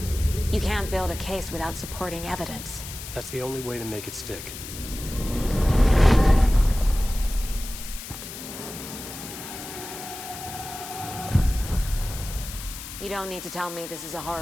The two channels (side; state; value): left; noise; hiss, 11 dB below the sound